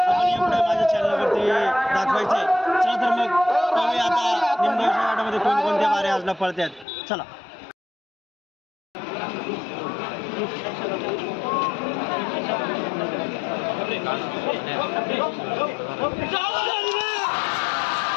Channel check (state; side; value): drops out; right; at 6.9 s